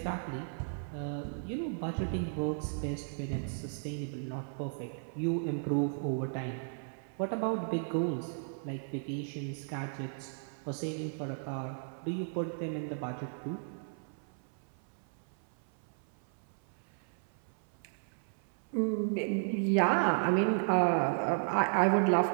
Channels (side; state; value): left; silent; 55 dB below the other